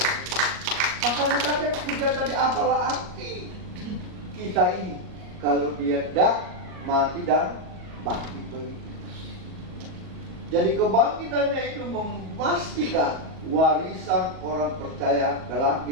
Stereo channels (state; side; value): late; left; 38 ms